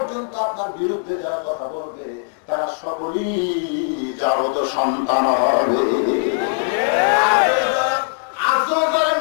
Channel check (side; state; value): right; silent; 66 dB below the other